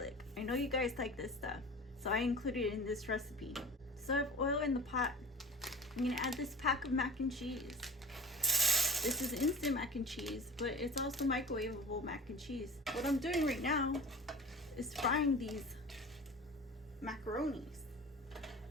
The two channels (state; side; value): normal; both; correlation 0.37